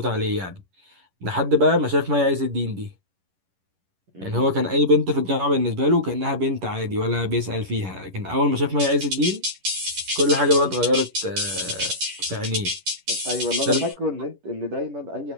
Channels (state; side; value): late; left; 11 ms